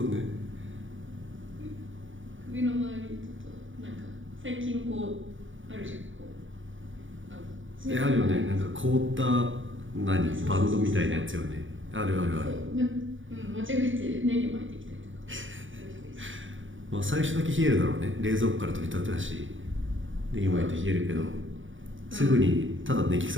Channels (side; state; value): left; late; 0.57 ms